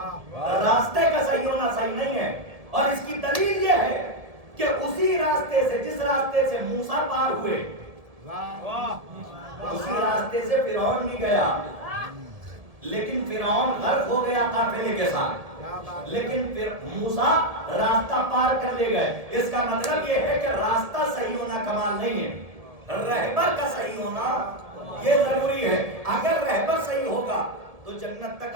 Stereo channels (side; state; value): left; late; 1.7 ms